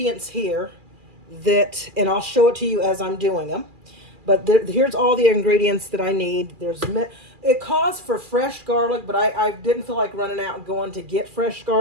here and I'll show it to you as I'm doing them. But here's all the ingredients that I need. It calls for fresh garlic, but I didn't feel like running out and going to get fresh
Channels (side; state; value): left; late; 2.4 ms